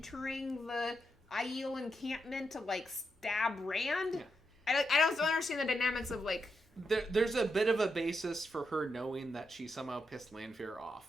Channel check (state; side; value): normal; both; correlation 0.83